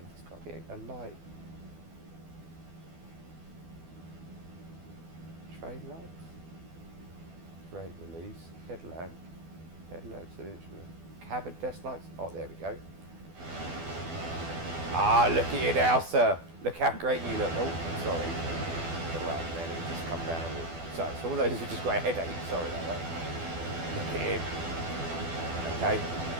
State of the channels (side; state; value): left; late; 12 ms